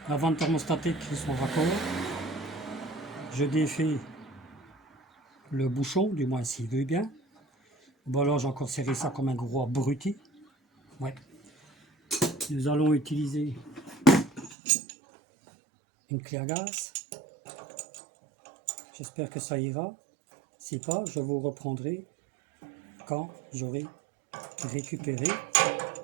la vente thermostatique qui sont raccord. Je défais le bouchon, du moins s'il veut bien. Bon alors j'ai encore serré ça comme un gros abruti. Ouais. Nous allons utiliser une clé à gaz. J'espère que ça ira. Si pas, je vous reprendrai quand j'aurai récupéré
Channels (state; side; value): drops out; left; at 14.6 s